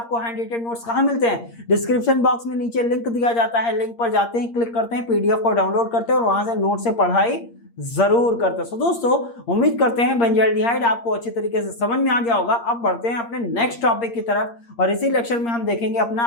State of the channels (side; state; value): right; late; 8.6 ms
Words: हैंड रिटेन नोट्स कहाँ मिलते हैं, डिस्क्रिप्शन बॉक्स में नीचे लिंक दिया जाता है, लिंक पर जाते हैं, क्लिक करते हैं, PDF को डाउनलोड करते हैं और वहां से नोट से पढ़ाई जरूर करते हैं। सो दोस्तों उम्मीद करते हैं बेंजाल्डिहाइड आपको अच्छी तरीके से समझ में आ गया होगा। अब बढ़ते हैं अपने नेक्स्ट टॉपिक की तरफ, और इसी लेक्चर में हम देखेंगे अपना